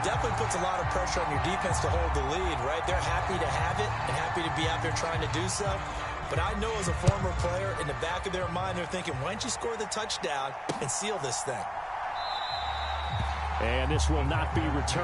definitely puts a lot of pressure on your defense to hold the lead, right? They're happy to have it and happy to be out there trying to do so. But I know as a former player, in the back of their mind, they're thinking, why don't you score the touchdown and seal this thing? And this will not be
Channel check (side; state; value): both; identical; correlation 1.00